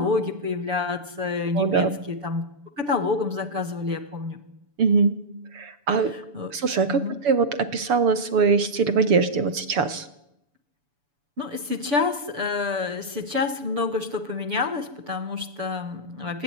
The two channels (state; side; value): late; left; 7.0 ms